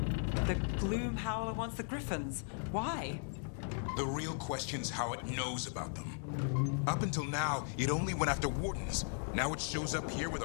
The Gloom Howler wants the Griffins. Why? The real question's how it knows about them. Up until now, it only went after Wardens. Now it shows up here with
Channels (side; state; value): right; silent; 53 dB below the other